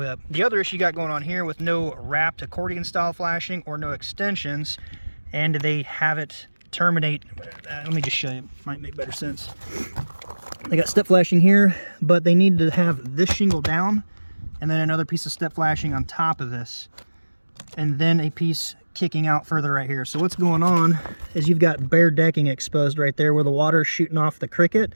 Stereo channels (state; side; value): inverted; both; correlation -1.00